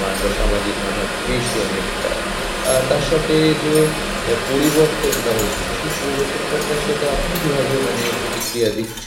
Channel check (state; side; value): identical; both; correlation 1.00